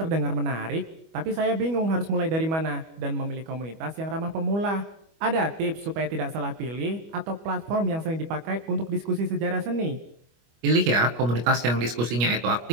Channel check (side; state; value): left; late; 25 ms